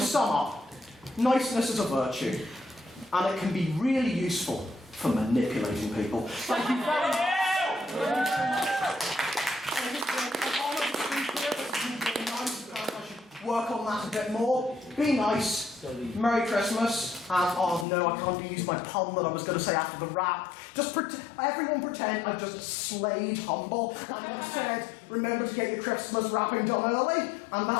sum up, niceness is a virtue, and it can be really useful for manipulating people. Thank you very much. Work on that a bit more. Be nice. Merry Christmas. And oh no, I can't use my pun that I was going to say after the rap. Just everyone pretend I've just slayed Humble and said, remember to get your Christmas wrapping done early. And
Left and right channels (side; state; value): right; drops out; at 17.9 s